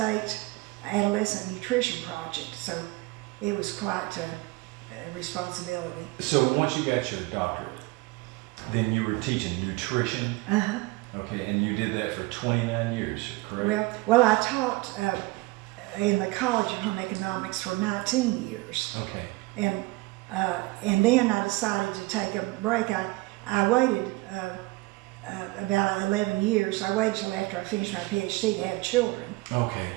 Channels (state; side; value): quieter; left; 22.3 dB